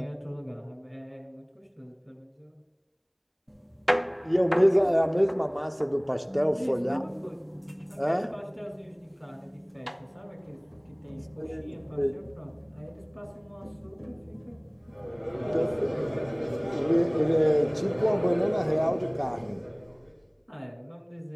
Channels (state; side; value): identical; both; correlation 1.00